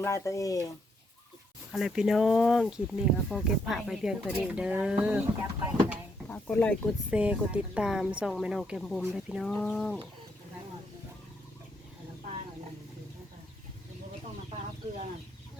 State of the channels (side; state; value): both; normal; correlation 0.75